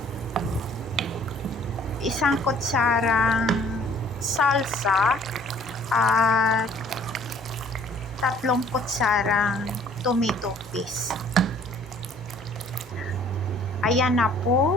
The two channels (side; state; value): both; normal; correlation 0.56